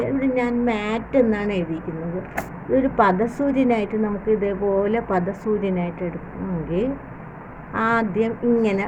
ഇവിടെ ഞാൻ മാറ്റ് എന്നാണ് എഴുതിയിരിക്കുന്നത്. ഇതൊരു പദസൂര്യനായിട്ട് നമുക്ക് ഇതേപോലെ പദസൂര്യനായിട്ട് എടുക്കണമെങ്കിൽ ആദ്യം ഇങ്ങനെ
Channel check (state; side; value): identical; both; correlation 1.00